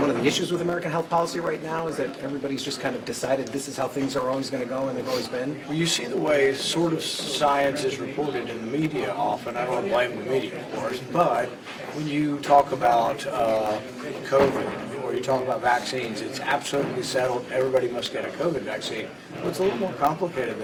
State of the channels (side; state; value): both; identical; correlation 1.00